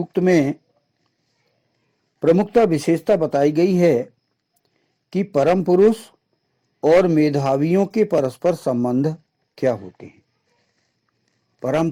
में प्रमुखता विशेषता बताई गई है कि परम पुरुष और मेधावियों के परस्पर संबंध क्या होते हैं। परम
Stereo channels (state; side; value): identical; both; correlation 1.00